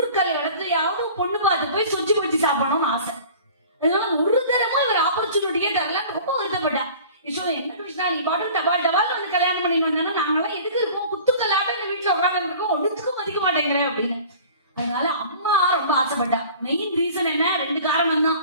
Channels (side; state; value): both; inverted; correlation -0.44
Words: இடத்துலயாவது பொண்ணு பார்த்து போய் சொச்சு வச்சு சாப்பிடணும்னு ஆசை. அதனால ஒரு தரமா இவர் ஆப்பர்ச்சுனிட்டியே தரல, ரொம்ப வருத்தப்பட்டா. யசோதை, என்ன கிருஷ்ணா நீ பாட்டு டபால் டபால் வந்து கல்யாணம் பண்ணி வந்தாங்கன்னா நாங்கெல்லாம் எதுக்கு இருக்கோம், குத்துக்கல்லாட்ட இந்த வீட்டுல உட்காந்து இருக்கோம், ஒன்றுத்துக்கும் மதிக்க மாட்டேங்கிறேன் அப்படின்னு. அதனால அம்மா ரொம்ப ஆசைப்பட்டா. மெயின் ரீசன் என்ன? 2 காரணம் தான்.